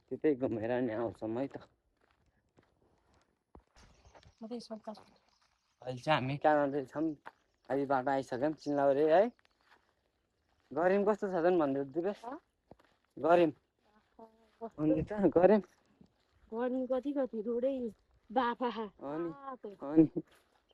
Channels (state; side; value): identical; both; correlation 1.00